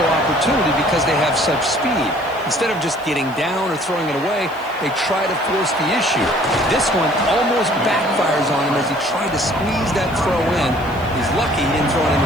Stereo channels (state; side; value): noise; right; hiss, 25 dB below the sound